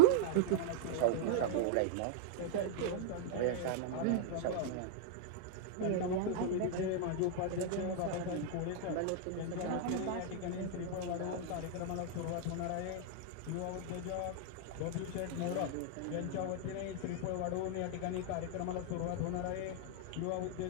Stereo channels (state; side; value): different; both; correlation -0.01